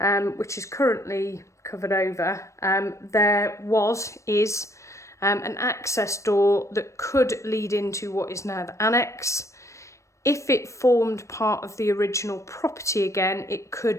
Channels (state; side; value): late; right; 0.15 ms